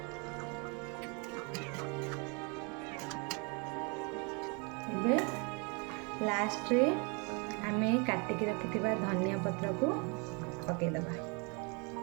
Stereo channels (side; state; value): left; quieter; 33.0 dB